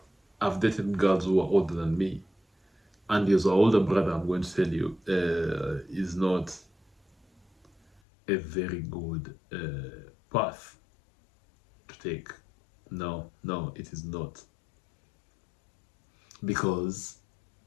I've dated girls who are older than me. And your older brother, I'm going to tell you, is not a very good path to take. No, it is not. Because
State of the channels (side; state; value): right; drops out; at 8.0 s